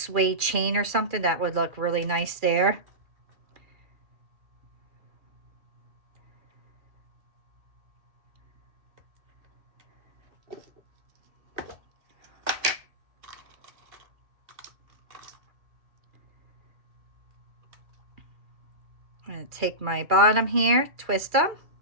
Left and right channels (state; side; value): late; left; 2.4 ms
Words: chain or something. That would look really nice there. I'm going to take my bottom here, twist them.